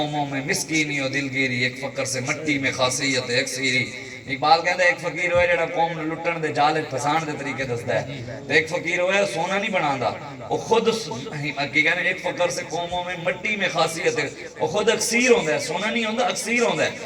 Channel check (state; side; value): identical; both; correlation 1.00